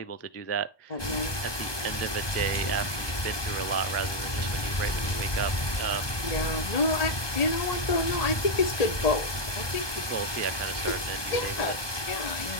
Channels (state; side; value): late; right; 1.2 ms